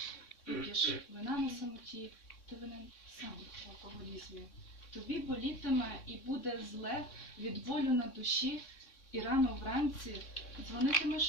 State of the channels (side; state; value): right; late; 3.6 ms